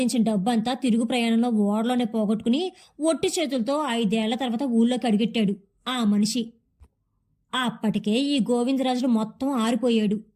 డబ్బంతా తిరుగు ప్రయాణంలో ఓడలోనే పోగొట్టుకుని ఒట్టి చేతులతో 5 ఏళ్ల తర్వాత ఊళ్ళోకి అడిగెట్టాడు ఆ మనిషి. అప్పటికే ఈ గోవిందరాజులు మొత్తం ఆరిపోయాడు.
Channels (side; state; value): both; identical; correlation 1.00